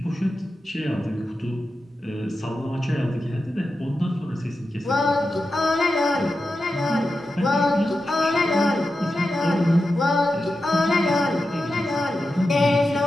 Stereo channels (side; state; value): both; normal; correlation 0.90